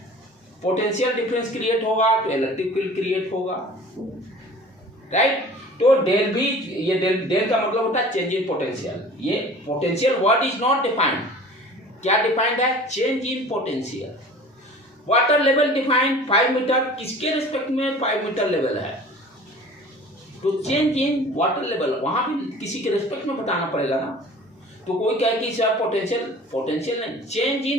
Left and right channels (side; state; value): both; normal; correlation 0.44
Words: पोटेंशियल डिफरेंस क्रिएट होगा तो इलेक्ट्रिक फील्ड क्रिएट होगा, राइट। तो डेल भी, ये डेल का मतलब होता है चेंज इन पोटेंशियल। ये potential word is not defined, क्या डिफाइंड है, change in potential. Water level defined 5 metre, किसके रिस्पेक्ट में 5 मीटर लेवल है, तो चेंज इन वाटर लेवल वहां भी किसी के रिस्पेक्ट में बताना पड़ेगा ना। तो कोई कहे कि सर पोटेंशियल नहीं, चेंज